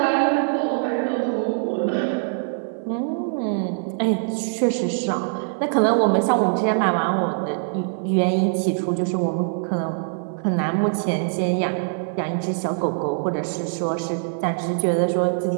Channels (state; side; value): silent; left; digital silence